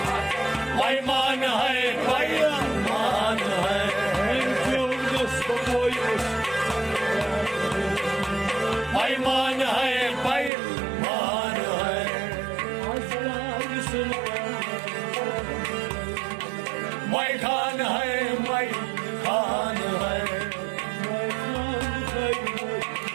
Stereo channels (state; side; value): drops out; left; at 10.5 s